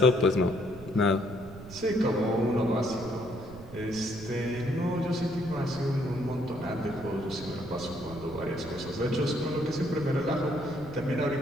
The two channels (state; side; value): noise; right; rumble, 15 dB below the sound